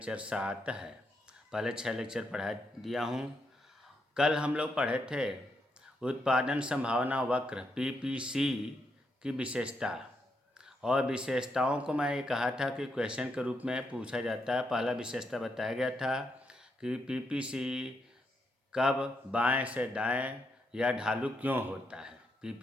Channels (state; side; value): normal; both; correlation 0.80